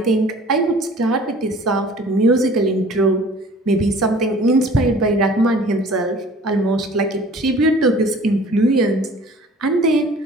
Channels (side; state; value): both; normal; correlation 0.48